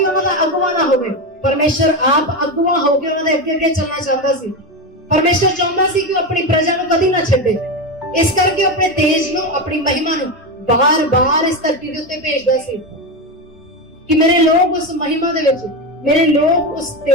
ਉਹਨਾਂ ਦਾ ਅਗਵਾ ਨਾ ਹੋਵੇ। ਪਰਮੇਸ਼ਰ ਆਪ ਅਗਵਾ ਹੋ ਕੇ ਉਹਨਾਂ ਦੇ ਅੱਗੇ ਅੱਗੇ ਚੱਲਣਾ ਚਾਹੁੰਦਾ ਸੀ। ਪਰਮੇਸ਼ਰ ਚਾਹੁੰਦਾ ਸੀ ਕਿ ਉਹ ਆਪਣੀ ਪ੍ਰਜਾ ਨੂੰ ਕਦੀ ਨਾ ਛੱਡੇ। ਇਸ ਕਰਕੇ ਆਪਣੇ ਤੇਜ ਨੂੰ, ਆਪਣੀ ਮਹਿਮਾ ਨੂੰ ਬਾਰ-ਬਾਰ ਇਸ ਧਰਤੀ ਦੇ ਉੱਤੇ ਭੇਜਦਾ ਸੀ ਕਿ ਮੇਰੇ ਲੋਕ ਉਸ ਮਹਿਮਾ ਦੇ ਵਿੱਚ, ਮੇਰੇ ਲੋਕ ਉਸ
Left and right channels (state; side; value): normal; both; correlation 0.16